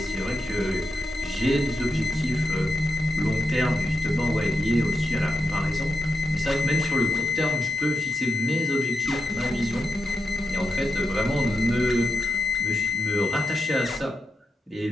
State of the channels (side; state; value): both; normal; correlation 0.87